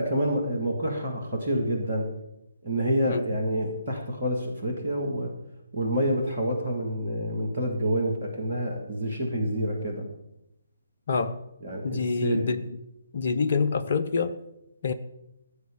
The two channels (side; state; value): both; inverted; correlation -0.72